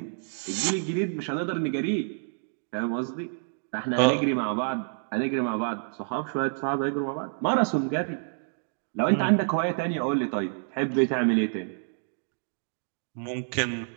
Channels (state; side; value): silent; left; digital silence